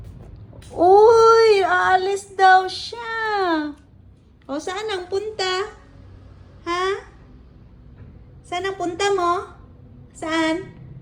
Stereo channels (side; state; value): both; identical; correlation 1.00